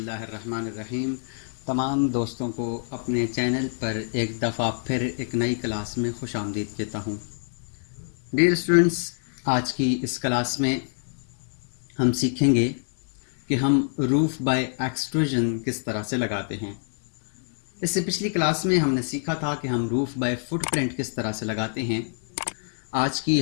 तमाम दोस्तों को अपने चैनल पर एक दफ़ा फिर एक नई क्लास में खुशामदीद कहता हूँ। डियर स्टूडेंट्स, आज की इस क्लास में हम सीखेंगे कि हम रूफ़ बाय एक्सट्रूजन किस तरह से लगाते हैं। इससे पिछली क्लास में हमने सीखा था कि हम रूफ़ बाय फुटप्रिंट किस तरह से लगाते हैं। आज की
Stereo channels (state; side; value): silent; right; digital silence